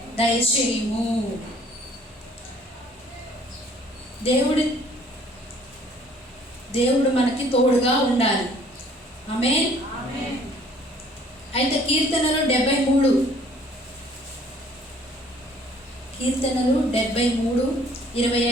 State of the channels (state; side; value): normal; both; correlation 0.57